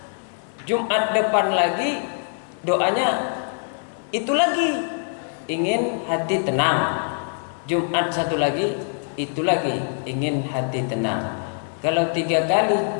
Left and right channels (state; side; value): silent; right; 63 dB below the other